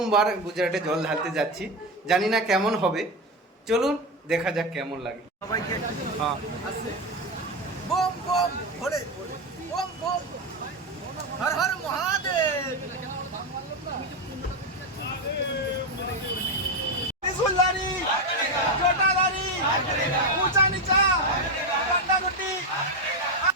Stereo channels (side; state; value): both; normal; correlation 0.12